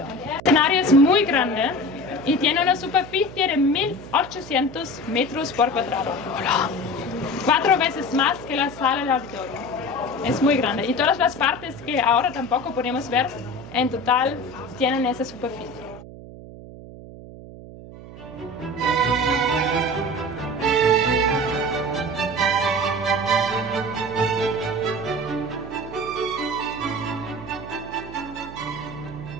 escenario es muy grande y tiene una superficie de 1800 metros por cuadrado. 4 veces más que la sala del auditorio. Es muy grande y todas las partes que ahora tampoco podemos ver en total tienen esa superficie.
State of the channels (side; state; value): right; noise; hum, 15 dB below the sound